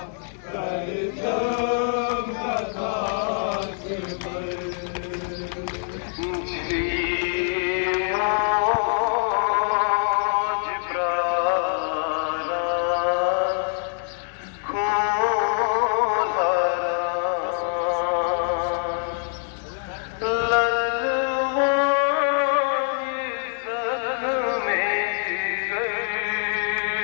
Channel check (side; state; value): right; silent; digital silence